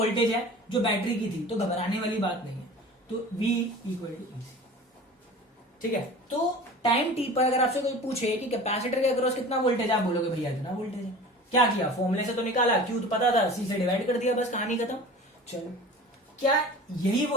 है जो बैटरी की थी, तो घबराने वाली बात नहीं है, तो V इक्वल टू ईसी, ठीक है। तो टाइम टी पर अगर आपसे कोई पूछे कि कैपेसिटर के अक्रॉस कितना वोल्टेज है, आप बोलोगे भैया इतना वोल्टेज है। क्या किया, फॉर्मूले से तो निकाला, क्यू तो पता था, सी से डिवाइड कर दिया, बस कहानी खत्म। चलो, क्या यही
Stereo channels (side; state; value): both; normal; correlation 0.38